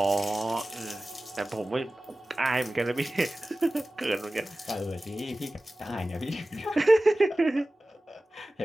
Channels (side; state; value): both; normal; correlation 0.96